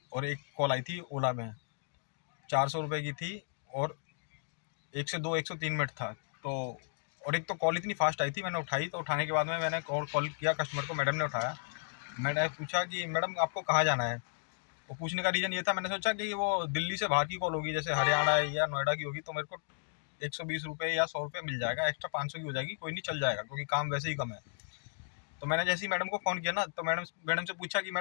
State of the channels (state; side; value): silent; right; digital silence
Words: और एक कॉल आई थी ओला में, 400 रुपये की थी और 103 मिनट था। तो और एक तो कॉल इतनी फास्ट आई थी, मैंने उठाई तो उठाने के बाद में मैंने और कॉल किया कस्टमर को, मैडम ने उठाया। मैंने पूछा कि मैडम आपको कहाँ जाना है। वो पूछने का रीज़न ये था, मैंने सोचा कि वो दिल्ली से बाहर की कॉल होगी, जैसे हरियाणा या नोएडा की होगी, तो मेरे को 120 रुपये या 100 रुपये मिल जाएगा, एक्स्ट्रा 500 की हो जाएगी, कोई नहीं चल जाएगा क्योंकि काम वैसे ही कम है। तो मैंने जैसे ही मैडम को फ़ोन किया ना, तो मैडम से पूछा कि